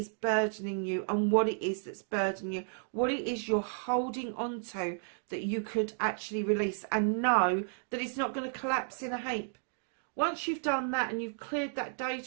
burdening you, and what it is that's burdening you, what it is you're holding on to that you could actually release, and know that it's not going to collapse in a heap. Once you've done that and you've cleared that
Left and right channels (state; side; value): silent; left; digital silence